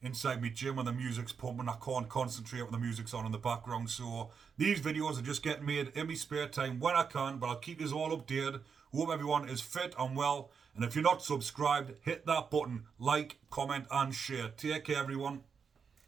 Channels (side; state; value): left; quieter; 6.2 dB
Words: inside my gym when the music's pumping, I can't concentrate when the music's on in the background. So these videos are just getting made in my spare time when I can, but I'll keep you all updated. Hope everyone is fit and well. And if you're not subscribed, hit that button, like, comment and share. Take care, everyone.